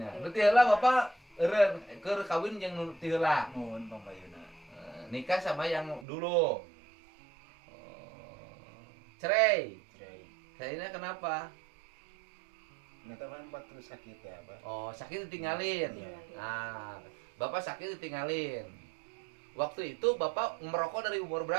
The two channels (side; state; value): left; drops out; at 6.1 s